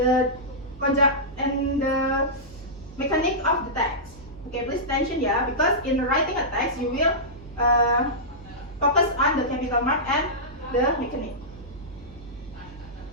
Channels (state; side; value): normal; both; correlation -0.15